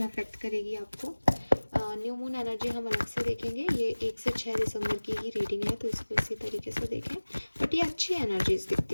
अफेक्ट करेगी आपको। न्यू मून एनर्जी हम अलग से देखेंगे, ये 1 से 6 दिसंबर की ही रीडिंग है, तो इसको इसी तरीके से देखें। बट ये अच्छी एनर्जीज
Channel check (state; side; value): inverted; both; correlation -1.00